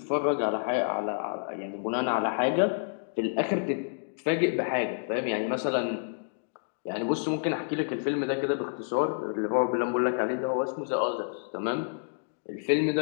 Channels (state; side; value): silent; right; digital silence